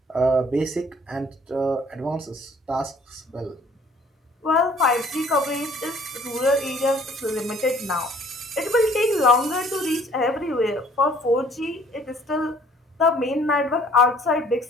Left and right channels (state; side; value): normal; both; correlation 0.57